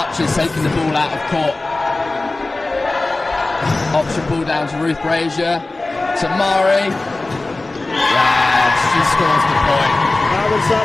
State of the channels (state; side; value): quieter; right; 3.1 dB